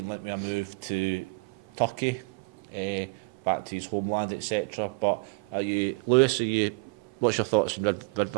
linked with a move to Turkey, back to his homeland, etc. But Lewis, what's your thoughts on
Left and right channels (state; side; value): quieter; left; 30.5 dB